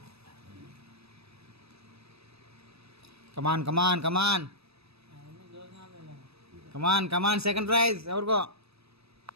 కమాన్ కమాన్ కమాన్ కమాన్ కమాన్ second prize ఎవరికో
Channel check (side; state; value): left; late; 0.78 ms